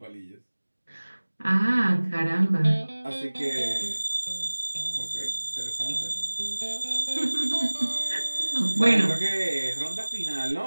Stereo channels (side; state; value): both; inverted; correlation -1.00